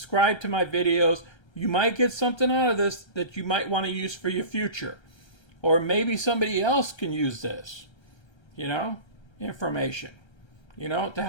to my videos. You might get something out of this that you might want to use for your future. Or maybe somebody else can use this, you know, information, you know, to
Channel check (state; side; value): late; right; 1.3 ms